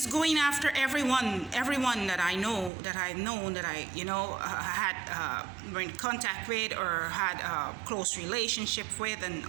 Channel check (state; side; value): drops out; left; at 2.7 s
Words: going after everyone that I know, that I've known, that I, you know, had were in contact with or had a close relationship with and